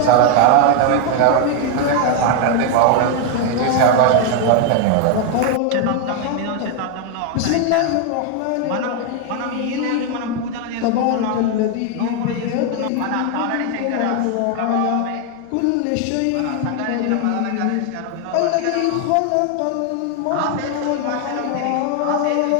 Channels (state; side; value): different; both; correlation 0.01